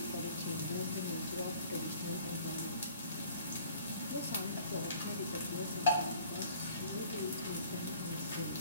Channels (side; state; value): both; inverted; correlation -0.53